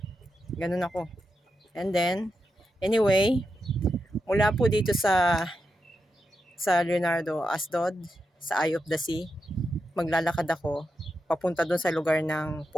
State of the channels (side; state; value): both; normal; correlation 0.87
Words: Ganun ako. And then, anyway, mula po dito sa Leonardo Asdod, sa Eye of the Sea, maglalakad ako papunta doon sa lugar ng